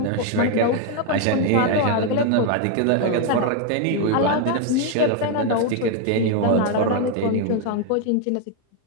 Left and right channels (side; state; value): both; different; correlation 0.00